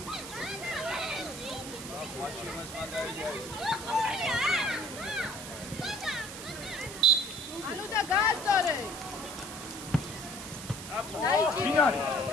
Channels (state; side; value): noise; right; hiss, 11 dB below the sound